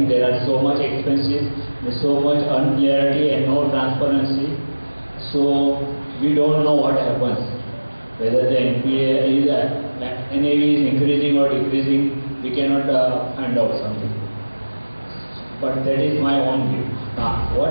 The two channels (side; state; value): both; inverted; correlation -1.00